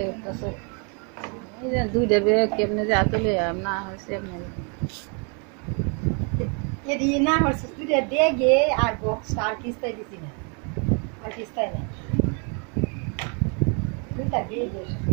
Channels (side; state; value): left; quieter; 36.8 dB